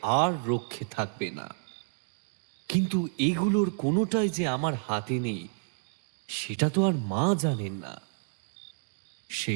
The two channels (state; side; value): silent; left; 58 dB below the other